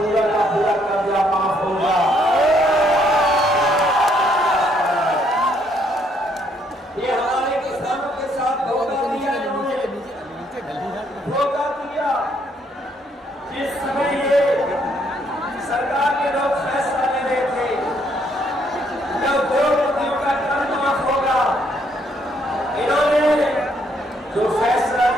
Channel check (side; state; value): both; normal; correlation 0.70